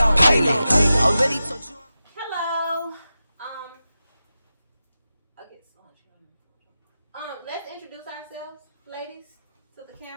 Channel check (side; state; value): both; inverted; correlation -0.92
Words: already told you. Hello. I get so much. Let's introduce ourselves, ladies, to the